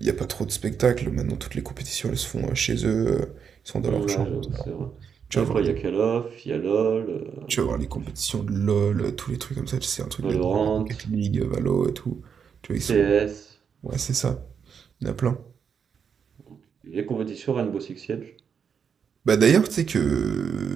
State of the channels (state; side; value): quieter; left; 6.9 dB